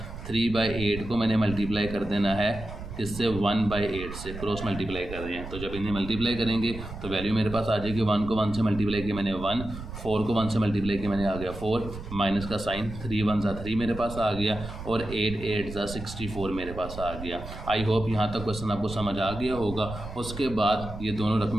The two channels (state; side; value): noise; right; rumble, 10 dB below the sound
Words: 3/8 को मैंने मल्टीप्लाई कर देना है इससे 1/8 से, क्रॉस मल्टीप्लाई कर रहे हैं। तो जब इन्हें मल्टीप्लाई करेंगे तो वैल्यू मेरे पास आ जाएगी। 1 को 1 से मल्टीप्लाई किया मैंने 1, 4 को 1 से मल्टीप्लाई किया मैंने आ गया 4, माइनस का साइन, 3 1 ज़ा 3 मेरे पास आ गया, और 8 8 ज़ा 64 मेरे पास आ गया। आई होप यहाँ तक क्वेश्चन आपको समझ आ गया होगा। उसके बाद ये दोनों